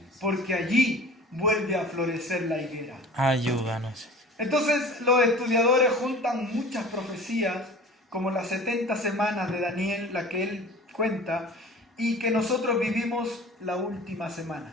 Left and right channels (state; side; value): normal; both; correlation 0.41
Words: porque allí vuelve a florecer la higuera. Ayúdanos. Entonces los estudiadores juntan muchas profecías, como las 70 semanas de Daniel, la que él cuenta, y que nosotros vivimos la última semana.